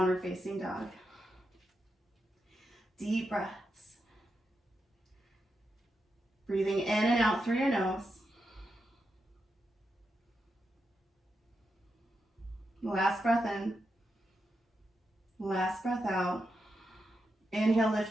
facing dog. Deep breaths. Breathing in and out through your nose. Last breath in. Last breath out. Inhale,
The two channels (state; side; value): normal; both; correlation 0.86